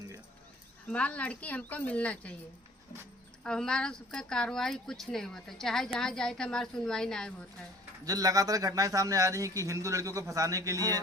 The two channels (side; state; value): both; normal; correlation 0.51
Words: हमारी लड़की हमको मिलना चाहिए और हमारा सबका कार्रवाई कुछ नहीं होता, चाहे जहाँ जाए तो हमारी सुनवाई नहीं होता है। जो लगातार घटनाएं सामने आ रही है कि हिंदू लड़कियों को फंसाने के लिए